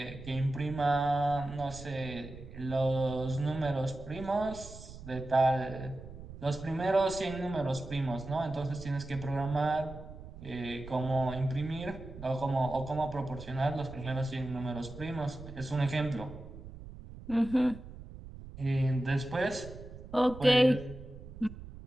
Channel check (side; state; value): right; noise; rumble, 14 dB below the sound